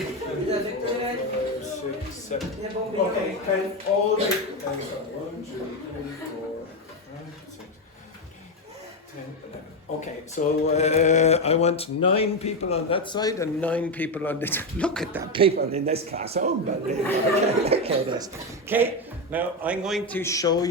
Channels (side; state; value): both; normal; correlation 0.10